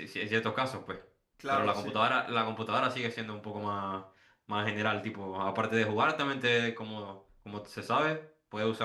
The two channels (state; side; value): identical; both; correlation 1.00